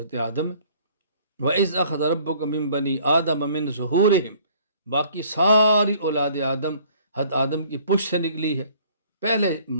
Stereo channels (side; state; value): both; inverted; correlation -0.56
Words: آدم ہے۔ وَإِذْ أَخَذَ رَبُّكَ مِن بَنِي آدَمَ مِن ظُهُورِهِمْ، باقی ساری اولاد آدم حضرت آدم کی پشت سے نکلی ہے۔ پہلے